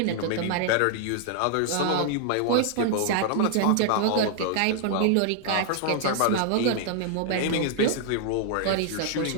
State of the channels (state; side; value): different; both; correlation 0.00